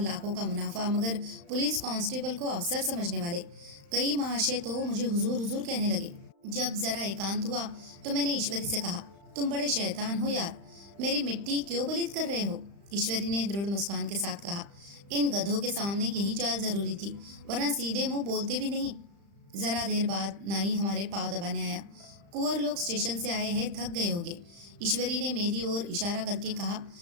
का मुनाफा, मगर पुलिस कांस्टेबल को अफसर समझने वाले कई महाशय तो मुझे हुजूर हुजूर कहने लगे। जब जरा एकांत हुआ तो मैंने ईश्वरी से कहा, तुम बड़े शैतान हो यार, मेरी मिट्टी क्यों पलीत कर रहे हो? ईश्वरी ने दृढ़ मुस्कान के साथ कहा, इन गधों के सामने यही चाल जरूरी थी, वरना सीधे मुंह बोलते भी नहीं। जरा देर बाद नाई हमारे पाँव दबाने आया। कुंवर लोग स्टेशन से आए हैं, थक गए होंगे। ईश्वरी ने मेरी ओर इशारा करके कहा,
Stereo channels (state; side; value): late; left; 35 ms